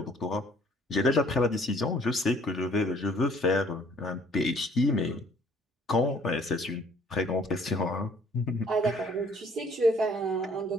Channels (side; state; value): both; normal; correlation 0.59